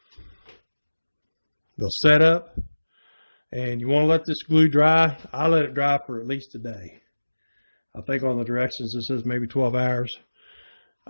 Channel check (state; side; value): inverted; both; correlation -1.00